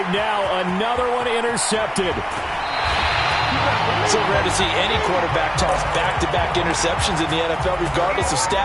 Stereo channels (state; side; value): identical; both; correlation 1.00